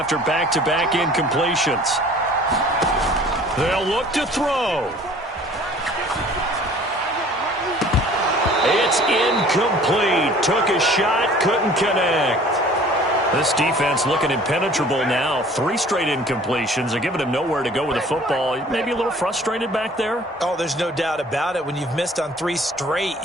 back-to-back incompletions. They'll look to throw. It's incomplete. Took a shot, couldn't connect. This defense looking impenetrable now. 3 straight incompletions. They're giving him nowhere to go with the football. Maybe a little frustrated back there. Oh, there's no doubt about it. When you've missed on 3 straight,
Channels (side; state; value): both; normal; correlation 0.50